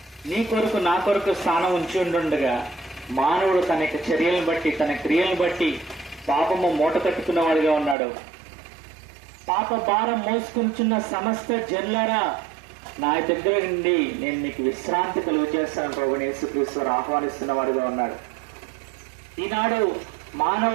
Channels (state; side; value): drops out; left; at 8.0 s